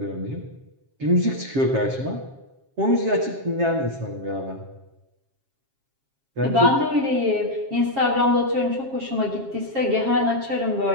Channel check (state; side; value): late; left; 7.4 ms